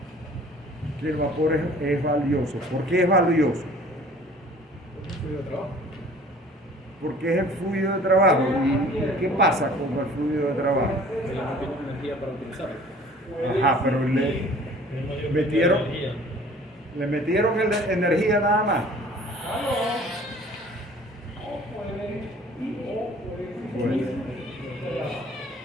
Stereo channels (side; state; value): both; normal; correlation 0.50